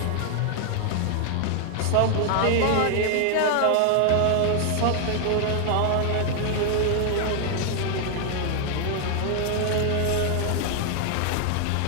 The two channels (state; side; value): different; both; correlation 0.00